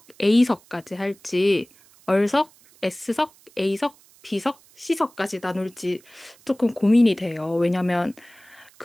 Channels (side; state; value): right; noise; hiss, 28 dB below the sound